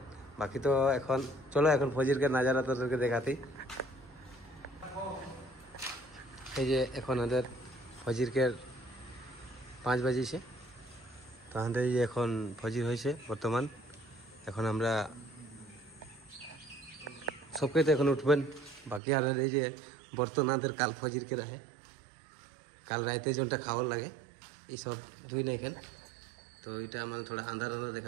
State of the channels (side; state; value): left; drops out; at 19.0 s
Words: বাকি তো এখন চলো এখন ফজির के नजारा তোদেরকে দেখাতেই এই যে এখন আমাদের ফজির के 5 बजे से তো আমাদের এই এখন ফজির হইছে বর্তমান এখন আমরা सबके तो এখন উঠবেন বাকি আর এই যে বর্তমানদের কাল ফজির के रहे কাল রাতে जोनটা খাওয়ার লাগে এই সব ধুই না এখানে তো এটা মানে थोड़ा अंधार अंधार